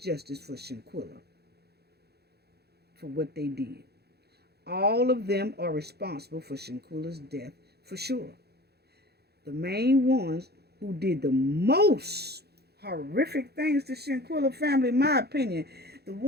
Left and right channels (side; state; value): left; late; 0.47 ms